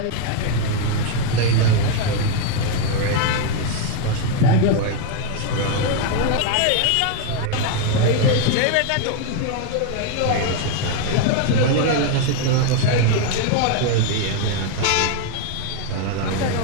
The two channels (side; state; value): both; different; correlation 0.01